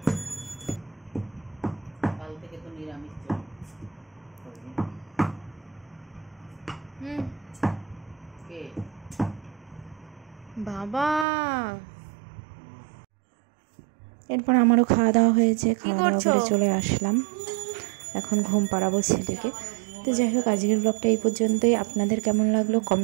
বাবা, এরপর আমারও খাওয়া দাওয়া হয়েছে, খাওয়া দাওয়া করে চলে আসলাম, এখন ঘুম পাড়াবো ছেলেকে। তো যাই হোক, আজকের ব্লগটা এই পর্যন্তই। আপনাদের কেমন লাগলো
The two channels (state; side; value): drops out; left; at 11.2 s